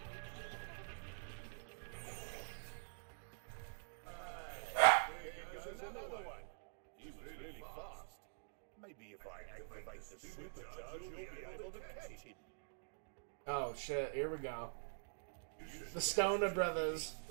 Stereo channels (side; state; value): left; silent; digital silence